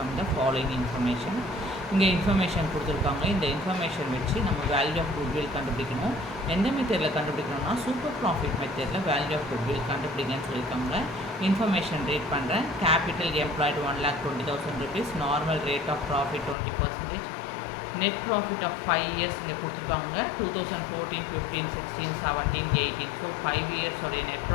the following information. இங்கே information கொடுத்துருக்காங்க. இந்த information வச்சு நம்ம value of goodwill கண்டுபிடிக்கணும். எந்த மெத்தடில் கண்டுபிடிக்கணும்னா super profit மெத்தடில் வேல்யூ ஆஃப் குட்வில் கண்டுபிடிங்கன்னு சொல்லியிருக்காங்க. இன்ஃபர்மேஷன் ரீட் பண்ணுறேன். Capital employed 1,20,000 rupees, normal rate of profit 20%, net profit of 5 years இங்கே கொடுத்துருக்காங்க. 2014, 15, 16, 17, 18. ஸோ 5 years உடைய net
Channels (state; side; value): drops out; right; at 16.6 s